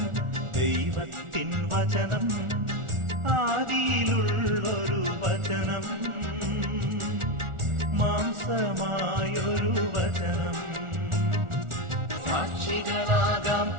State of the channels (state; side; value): late; left; 1.4 ms